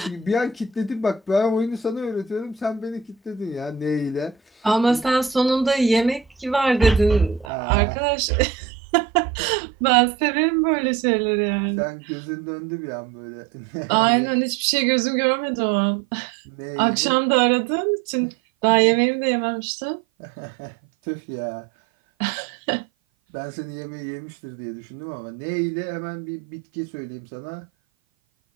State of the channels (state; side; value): drops out; left; at 7.5 s